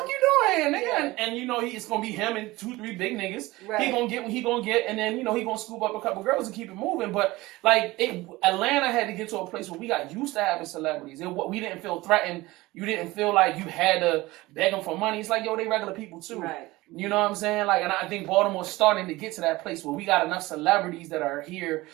you doing, nigga? And it's gonna be him and 2-3 big niggas. Right. He gonna get what he gonna get, and then he gonna scoop up a couple girls and keep it moving. But like Atlanta had to get to a place where we got used to having celebrities. We didn't feel threatened. You didn't feel like you had to beg them for money. It's like, yo, they regular people too. Right. You know what I'm saying? Like, and I think Baltimore's starting to get to that place where we got enough celebrities that are here,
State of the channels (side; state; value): left; quieter; 19.9 dB